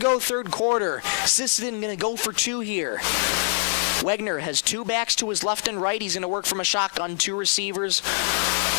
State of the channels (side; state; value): right; silent; digital silence